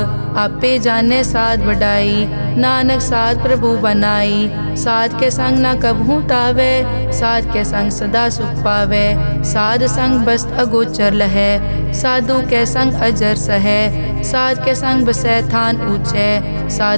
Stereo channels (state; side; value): inverted; both; correlation -1.00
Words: आपे जाने साध बढ़ाई, नानक साध प्रभु बनाई। साध के संग ना कबहू तावे, साध के संग सदा सुख पावे। साध संग बस्त अगोचर लहै, साधु के संग अजर सहै। साध के संग बसै थान ऊंचे,